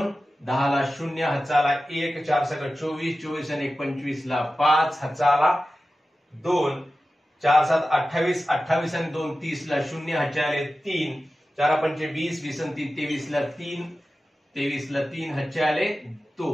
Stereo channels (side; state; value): both; normal; correlation 0.94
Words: 10 ला 0, हातचा आला 1, 4 सगळं 24, 24 आणि 1 25 ला 5, हातचा आला 2, 4 7 28, 28 आणि 2 30 ला 0, हातच्या आले 3, 4 पंचे 20, 20 आणि 3 23 ला 3, 23 ला 3, हातचे आले